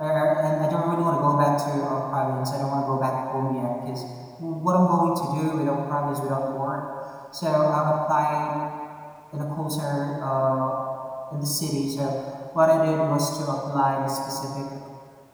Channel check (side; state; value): both; identical; correlation 1.00